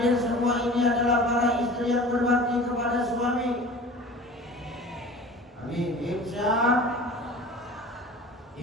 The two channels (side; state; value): both; normal; correlation 0.40